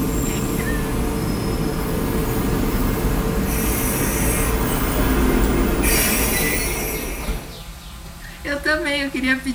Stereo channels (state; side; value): identical; both; correlation 1.00